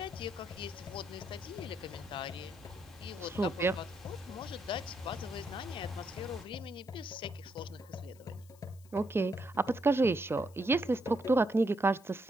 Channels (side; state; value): left; noise; hiss, 26 dB below the sound